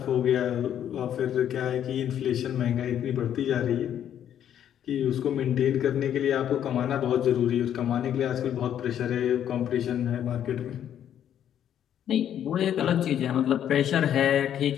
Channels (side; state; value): right; quieter; 10.1 dB